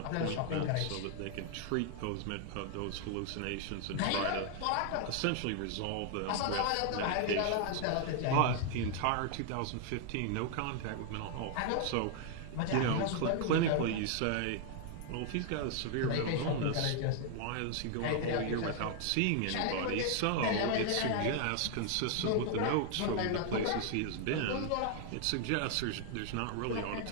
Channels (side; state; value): both; different; correlation 0.00